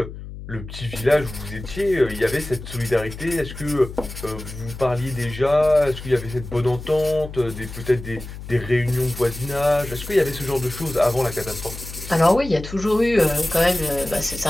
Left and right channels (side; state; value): left; noise; hum, 12 dB below the sound